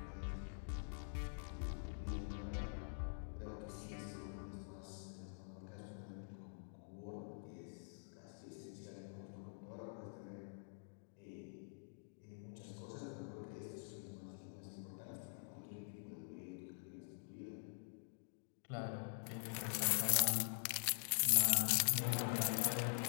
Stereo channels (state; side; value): silent; right; digital silence